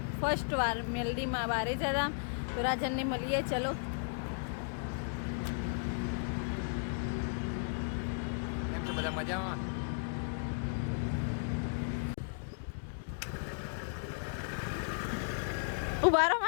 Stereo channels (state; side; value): silent; right; digital silence